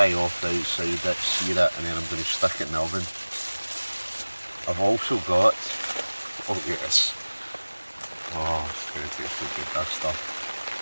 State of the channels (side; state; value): both; inverted; correlation -1.00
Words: off the outside it, sear it, and then I'm going to stick it in the oven. I've also got, oh yes, oh it's going to taste so good, this stuff.